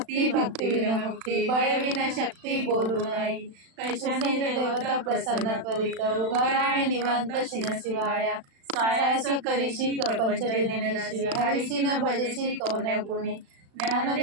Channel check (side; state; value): left; late; 36 ms